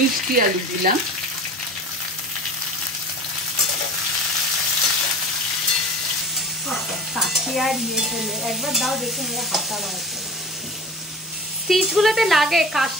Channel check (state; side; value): normal; both; correlation 0.37